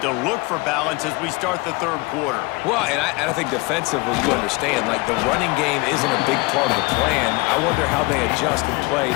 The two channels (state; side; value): quieter; right; 25.1 dB